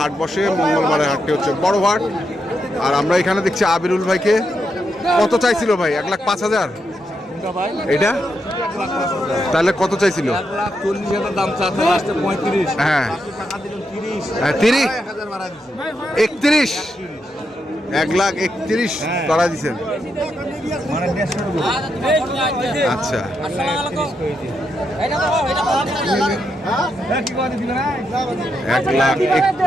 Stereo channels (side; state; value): both; normal; correlation 0.82